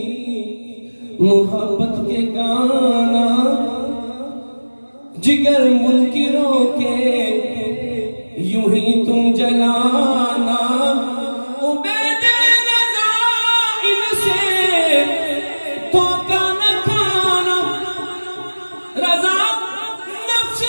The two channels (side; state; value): both; inverted; correlation -1.00